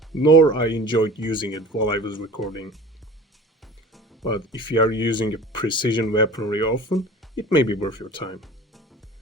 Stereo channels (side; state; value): both; normal; correlation 0.41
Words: nor I enjoyed using it while I was recording. But if you are using a precision weaponry often, it may be worth your time.